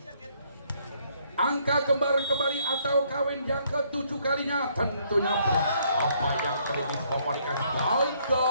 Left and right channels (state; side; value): inverted; both; correlation -0.68